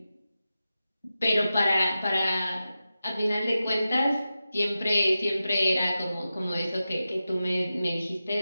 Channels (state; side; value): inverted; both; correlation -0.92